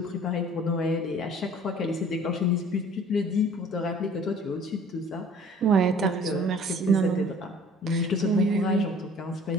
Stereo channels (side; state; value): both; normal; correlation 0.51